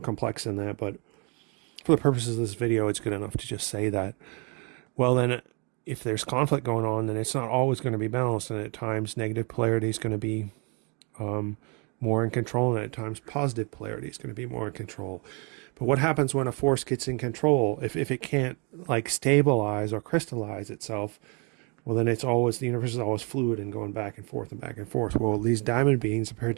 than that, but for the purposes of this video, it's good enough to just say that. Well, then if there's conflict going on, then it's not always going to be balanced, and at times negative polarity is going to be more in control, and at times positive polarity is going to be more in control. But what happens when a force gets in control? If it can't like stabilize or crystallize itself, well, then it's always, the universe is always fluid and going back and forth and back and forth. Well, these diamond beings appear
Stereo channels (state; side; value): quieter; left; 33.4 dB